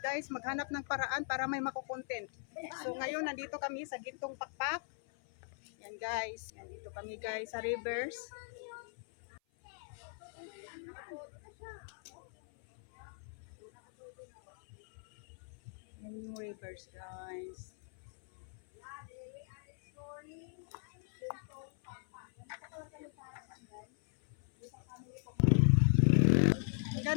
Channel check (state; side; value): silent; right; 52 dB below the other